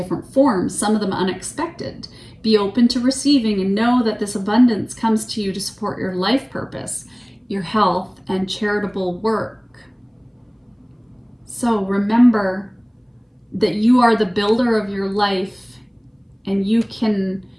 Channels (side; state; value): both; identical; correlation 1.00